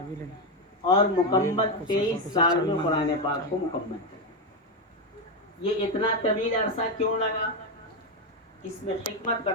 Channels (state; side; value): normal; both; correlation 0.08